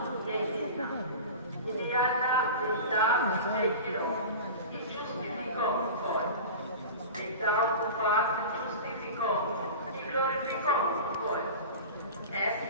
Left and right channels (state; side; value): inverted; both; correlation -0.32